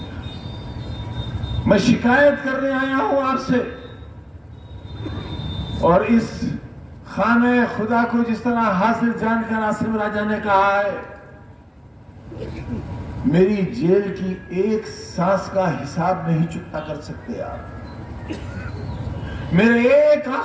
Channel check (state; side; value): identical; both; correlation 1.00